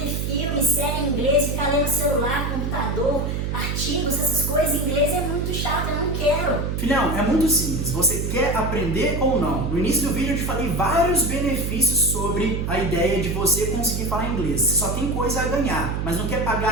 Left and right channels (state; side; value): noise; right; hum, 1 dB below the sound